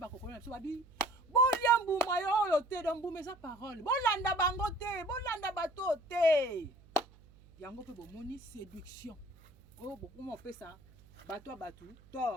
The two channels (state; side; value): noise; right; hum, 25 dB below the sound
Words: biso babi. Bolia mbuma yo te do mbuma eza parole. Bolanda bango te, bolanda bato te. Yango pe bomoni séduction. Oh bokuma opesa bato batu